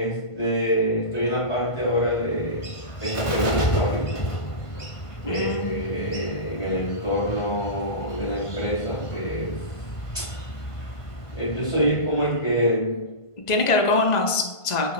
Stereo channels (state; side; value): late; right; 1.5 ms